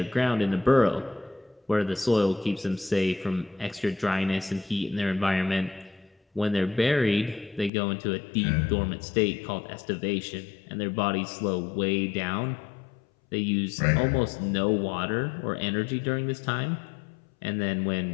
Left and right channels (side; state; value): right; drops out; at 7.7 s